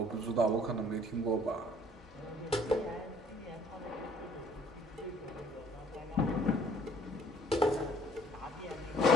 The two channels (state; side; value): normal; both; correlation 0.57